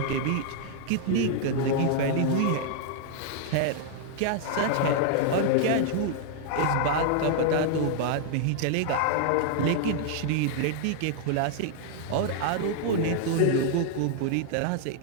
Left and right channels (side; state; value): both; different; correlation -0.01